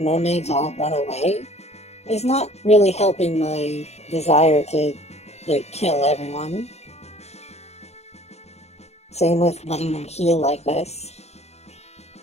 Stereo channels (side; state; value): right; late; 0.31 ms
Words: all run away is not really helping my desire to, like, kill everyone. Same with letting them heal like this.